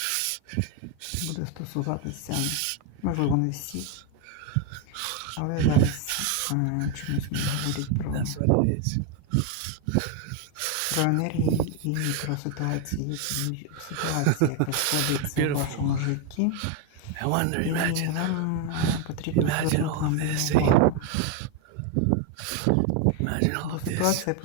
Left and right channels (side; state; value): both; different; correlation 0.01